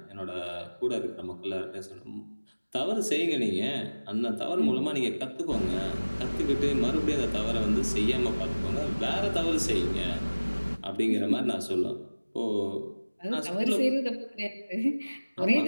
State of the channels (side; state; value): both; inverted; correlation -1.00